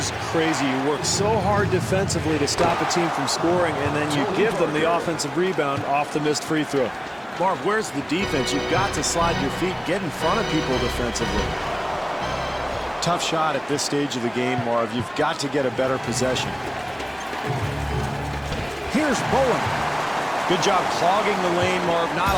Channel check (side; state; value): both; identical; correlation 1.00